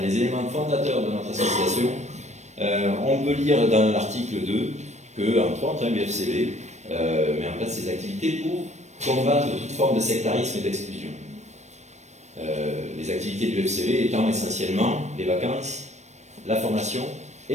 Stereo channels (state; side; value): late; left; 0.33 ms